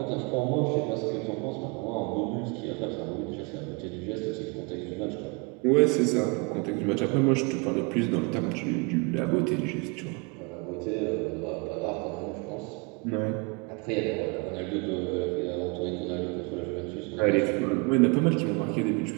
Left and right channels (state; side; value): quieter; left; 30.7 dB